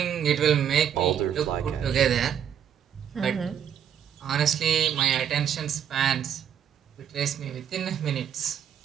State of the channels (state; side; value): quieter; left; 9.0 dB